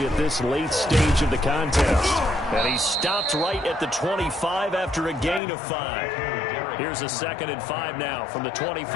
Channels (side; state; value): right; drops out; at 5.4 s